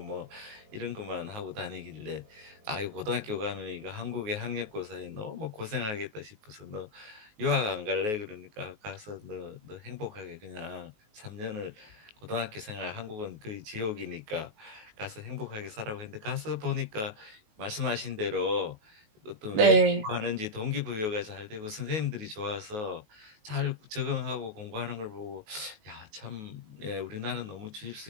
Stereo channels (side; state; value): left; late; 19 ms